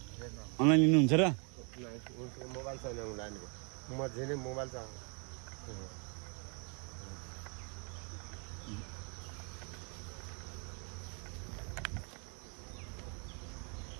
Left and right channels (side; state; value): left; quieter; 36.5 dB